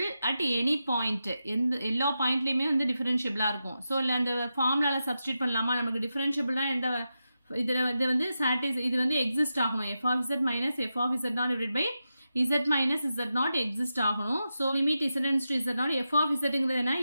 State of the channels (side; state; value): both; inverted; correlation -0.89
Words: at any point. எல்லா பாயிண்ட்லையுமே வந்து டிஃபரன்ஷியபிளாக இருக்கும். So இல்லை அந்த ஃபார்முலாவில் substitute பண்ணலாமா? நமக்கு டிஃபரன்ஷியபிள்னா எந்த இதில் இது வந்து இது வந்து எக்ஸிஸ்ட் ஆகணும். f of z minus f of z naught divided by z minus z naught exist ஆகணும். So limit distance to z naught f of zங்கிறது என்ன